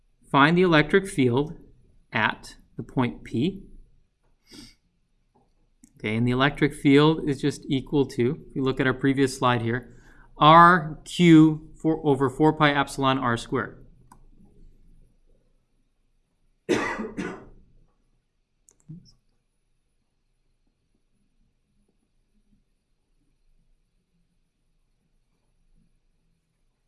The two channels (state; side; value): identical; both; correlation 1.00